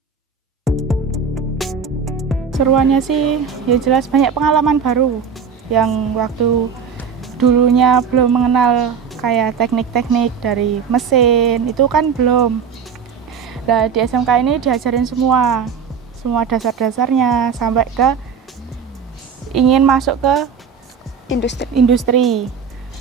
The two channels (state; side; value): quieter; left; 6.5 dB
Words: Seruannya sih ya jelas banyak pengalaman baru yang waktu dulunya belum mengenal kayak teknik-teknik dari mesin itu kan belum. Nah, di SMK ini diajarin semua dasar-dasarnya sampai ke ingin masuk ke industri.